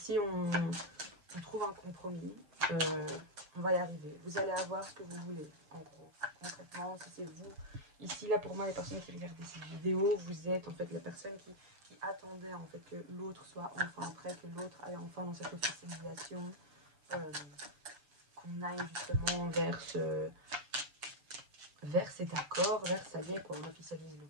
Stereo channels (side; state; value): left; late; 6.5 ms